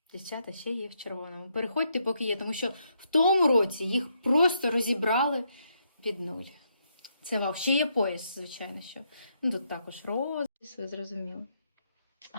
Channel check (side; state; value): both; inverted; correlation -0.77